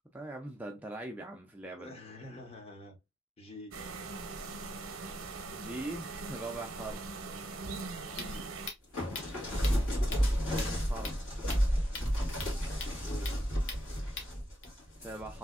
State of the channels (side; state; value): both; normal; correlation 0.83